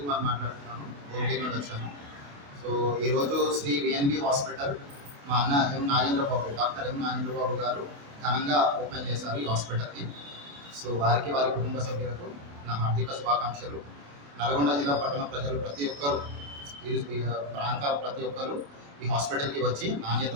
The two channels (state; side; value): late; left; 28 ms